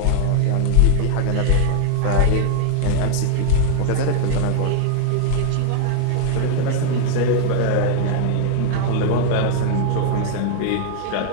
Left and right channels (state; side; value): different; both; correlation 0.00